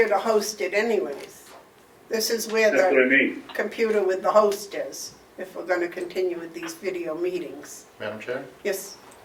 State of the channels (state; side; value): identical; both; correlation 1.00